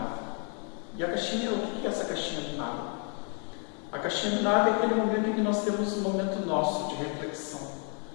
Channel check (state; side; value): quieter; right; 39.4 dB